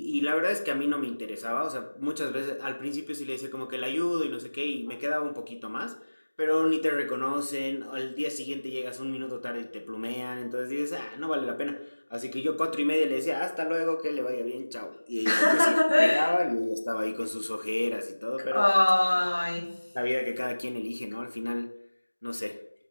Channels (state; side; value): inverted; both; correlation -1.00